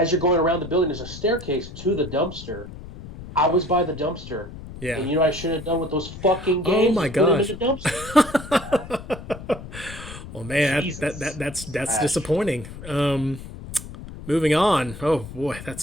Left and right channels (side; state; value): left; noise; rumble, 13 dB below the sound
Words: you're going around the building, there's a staircase to the dumpster. I was by the dumpster, Yeah. and what I should have done with those fucking Oh games my is put them in gosh. the dumpster. Well, man, Jesus. that's Trash. disappointing. Moving on. Oh boy,